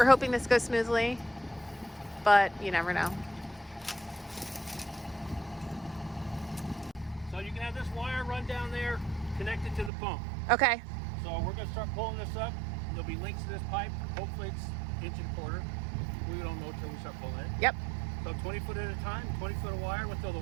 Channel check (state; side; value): drops out; left; at 9.9 s